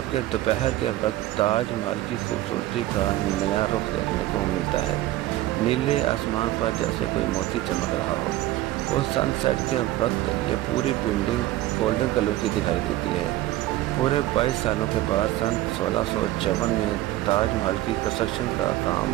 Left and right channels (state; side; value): quieter; left; 15.7 dB